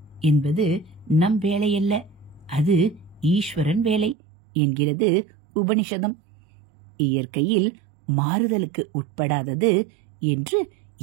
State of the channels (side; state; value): left; drops out; at 4.2 s